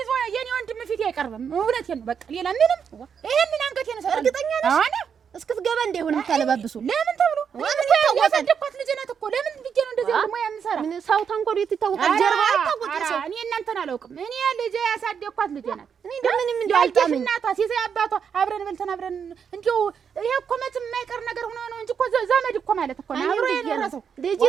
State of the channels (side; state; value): left; quieter; 7.1 dB